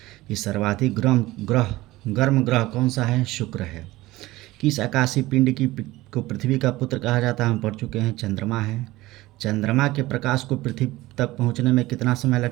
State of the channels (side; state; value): left; quieter; 18.4 dB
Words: कि सर्वाधिक गर्म ग्रह कौन सा है, शुक्र है। किस आकाशीय पिंड को पृथ्वी का पुत्र कहा जाता है, हम पढ़ चुके हैं, चंद्रमा है। चंद्रमा के प्रकाश को पृथ्वी तक पहुंचने में कितना समय